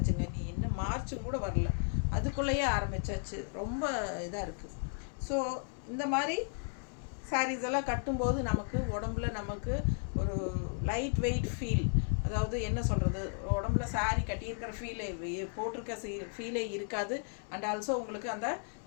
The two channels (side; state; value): right; silent; 55 dB below the other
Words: நீ இன்னும் மார்ச்சும் கூட வரல, அதுக்குள்ளேயே ஆரம்பிச்சாச்சு. ரொம்ப இதாக இருக்குது. ஸோ இந்த மாதிரி சாரீஸ் எல்லாம் கட்டும்போது நமக்கு உடம்புல நமக்கு ஒரு லைட் வெயிட் ஃபீல், அதாவது என்ன சொல்கிறது, உடம்புல சாரீ கட்டியிருக்கிற ஃபீலே, போட்டிருக்க ஃபீலே இருக்காது. அண்ட் ஆல்சோ உங்களுக்கு அந்த